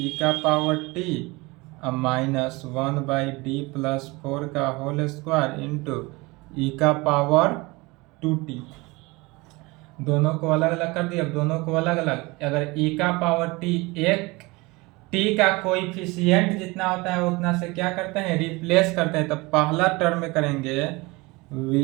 का power t minus 1 by D plus 4 का होल स्क्वायर इंटू ई का पावर 2t। दोनों को अलग अलग कर दिया। अब दोनों को अलग अलग, अगर e का पावर t एक t का कोएफिशिएंट जितना होता है उतना से क्या करते हैं, रिप्लेस करते हैं। तो पहला टर्म में करेंगे v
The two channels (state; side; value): quieter; left; 23.8 dB